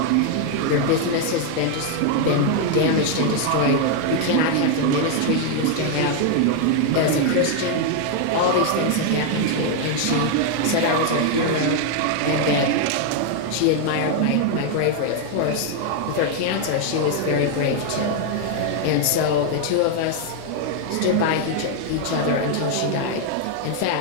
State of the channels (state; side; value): different; both; correlation 0.01